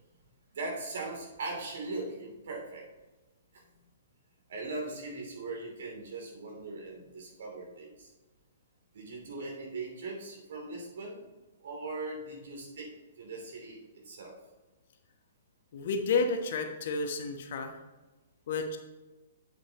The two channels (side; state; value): both; inverted; correlation -0.39